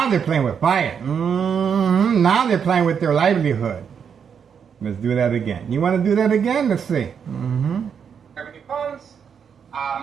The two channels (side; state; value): left; quieter; 7.2 dB